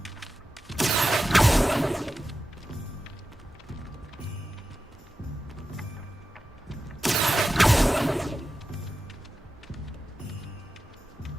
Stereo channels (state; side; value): normal; both; correlation 0.92